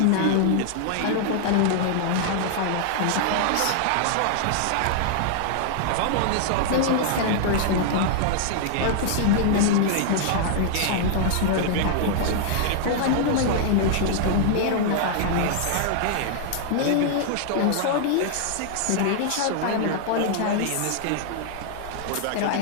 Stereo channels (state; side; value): different; both; correlation -0.01